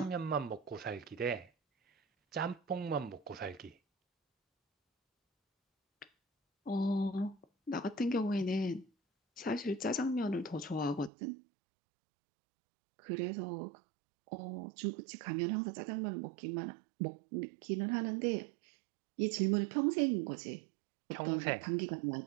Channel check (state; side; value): drops out; left; at 11.1 s